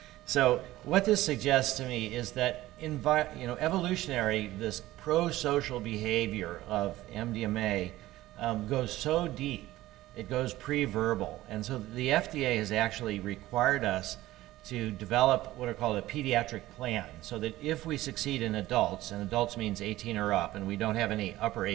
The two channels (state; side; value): quieter; left; 16.3 dB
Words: so what this suggests to me is that evolutionary, this pro-social behavior of MDMA goes so deep, it goes pre-verbal. And so the FDA has actually required us to develop what are called a pediatric plan, so that if we succeed in adults, and adults means 18 or up, and we don't have any upper